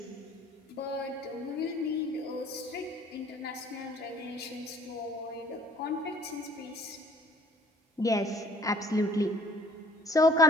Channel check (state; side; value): normal; both; correlation 0.56